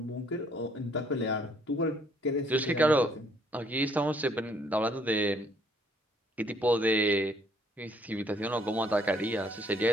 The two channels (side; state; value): both; normal; correlation 0.65